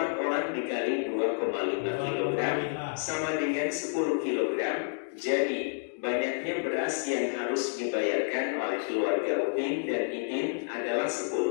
orang dikali 2,5 kg sama dengan 10 kg. Jadi banyaknya beras yang harus dibayarkan oleh keluarga Upin dan Ipin adalah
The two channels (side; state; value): right; silent; digital silence